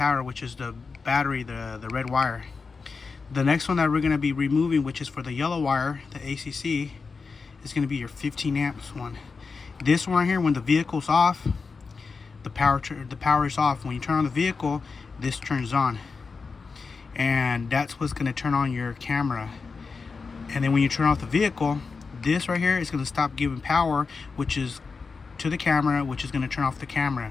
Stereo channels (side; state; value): right; quieter; 4.7 dB